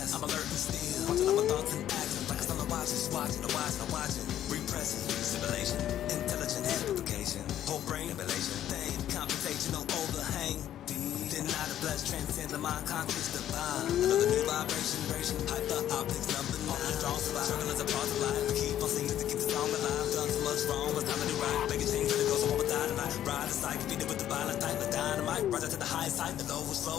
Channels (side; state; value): right; quieter; 11.4 dB